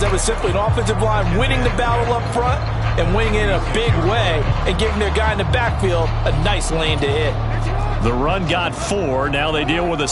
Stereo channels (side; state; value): both; identical; correlation 1.00